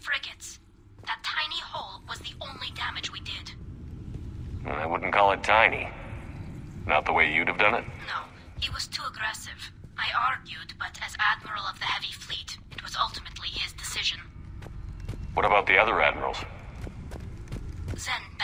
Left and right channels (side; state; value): both; identical; correlation 1.00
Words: frigates. That tiny hole was the only damage we did. I wouldn't call it tiny. Not the way you'd have done it? No, he was too aggressive. I argued, but as Admiral of the Heavy Fleet, it was ultimately his decision. What about the other admirals? Zen